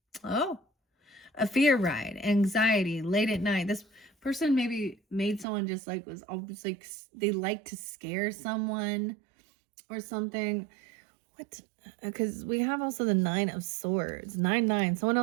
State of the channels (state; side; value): drops out; left; at 5.5 s